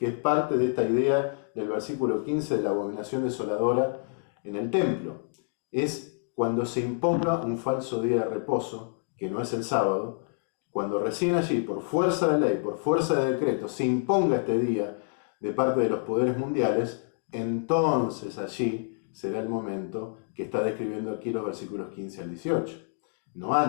es parte de esta idea del versículo 15 de la abominación desoladora en el templo. Es cuando se imponga un falso día de reposo, que no es el sábado, cuando recién allí, por fuerza de ley, por fuerza de decreto, se imponga este día de parte de los poderes mundiales, entonces allí será el momento que está describiendo aquí los versículos 15 al 18, no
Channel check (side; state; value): right; silent; 59 dB below the other